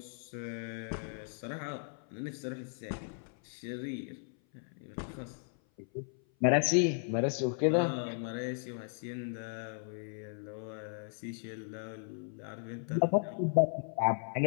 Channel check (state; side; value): silent; right; 54 dB below the other